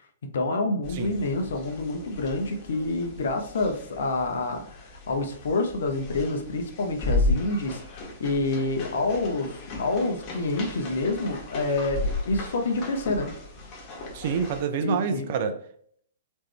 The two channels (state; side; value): inverted; both; correlation -0.43